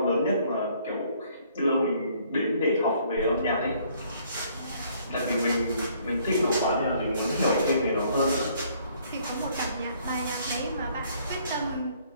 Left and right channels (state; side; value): inverted; both; correlation -0.63